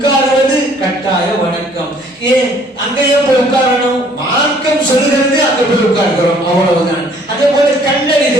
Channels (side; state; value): both; normal; correlation 0.59